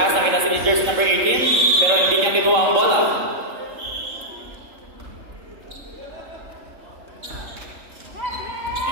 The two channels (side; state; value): left; late; 3.7 ms